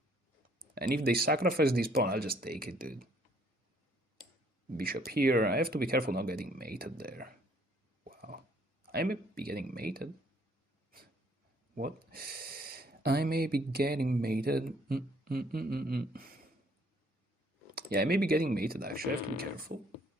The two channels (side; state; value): both; normal; correlation 0.63